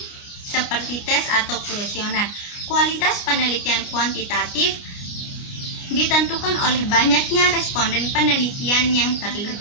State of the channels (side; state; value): right; late; 29 ms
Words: seperti tes atau kuesioner. Kualitas penelitian kuantitatif ditentukan oleh banyaknya responden penelitian yang terlibat.